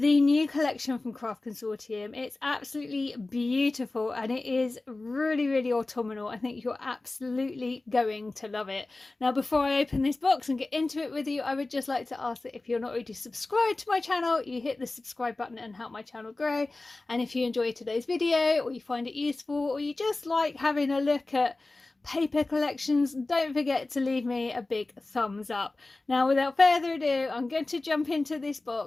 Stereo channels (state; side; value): quieter; right; 3.1 dB